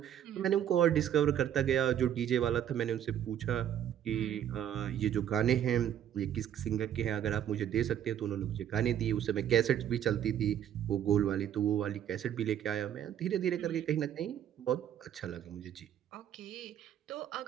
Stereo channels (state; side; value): quieter; left; 10.2 dB